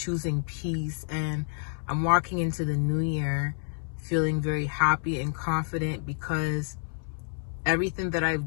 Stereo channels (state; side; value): silent; right; 59 dB below the other